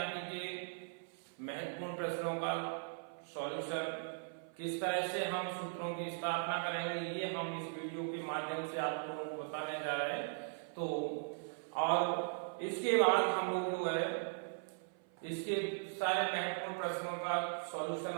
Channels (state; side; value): silent; left; 52 dB below the other